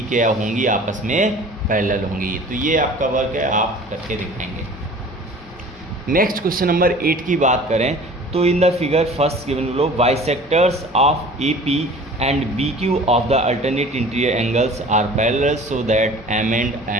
क्या होंगी, आपस में पैरेलल होंगी। तो ये आपका वर्क है, आप करके दिखाएंगे। नेक्स्ट क्वेश्चन नंबर 8 की बात करें तो in the figure first given below bisectors of AP and BQ of the alternate interior angles are parallel so that M and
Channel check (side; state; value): both; normal; correlation 0.45